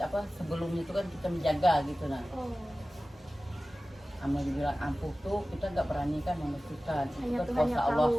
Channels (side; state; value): both; normal; correlation 0.96